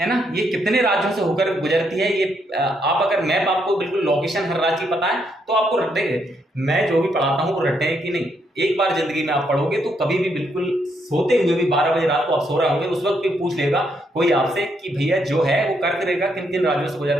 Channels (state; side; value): normal; both; correlation 0.76